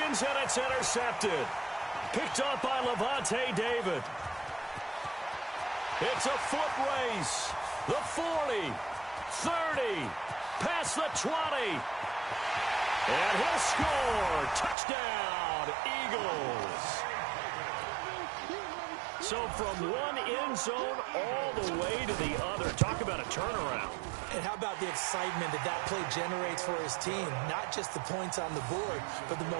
and it's intercepted. Picked up by Levante David. It's a foot race. The 40, 30, past the 20. And he'll score. Touchdown, Eagles. So from one end zone all the way to the other. Talk about a turnaround. And how about the excitement that that play generates for his team? Not just the points on the board, but the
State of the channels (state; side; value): drops out; left; at 14.8 s